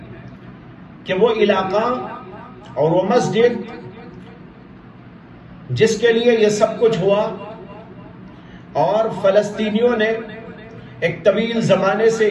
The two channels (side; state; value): both; identical; correlation 1.00